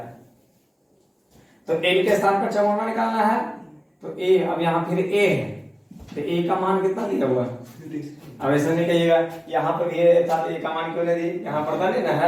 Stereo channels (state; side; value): identical; both; correlation 1.00